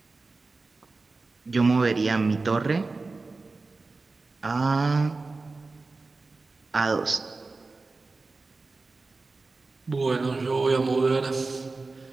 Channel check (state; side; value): quieter; left; 3.7 dB